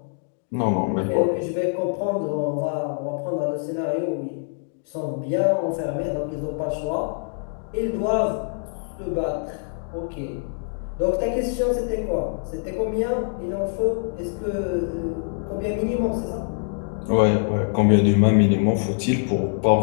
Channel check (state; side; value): silent; right; digital silence